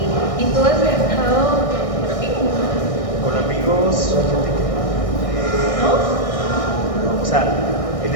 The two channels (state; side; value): late; right; 1.6 ms